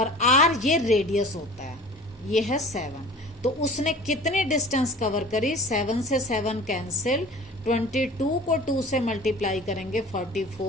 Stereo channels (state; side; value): normal; both; correlation 0.42